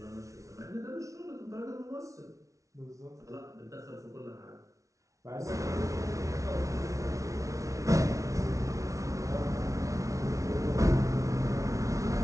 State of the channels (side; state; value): left; late; 0.15 ms